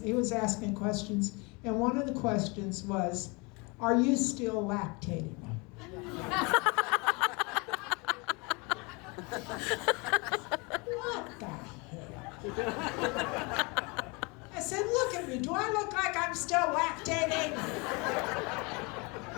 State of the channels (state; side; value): quieter; right; 28.7 dB